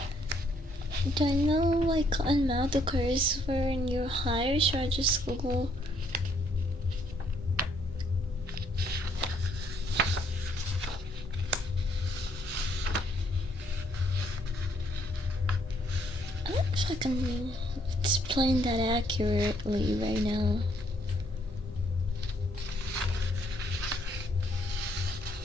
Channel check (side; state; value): both; normal; correlation 0.69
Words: Do I know why cotton mouth occurs when you're high, or should I just Google? I don't know if I can explain that accurately right now.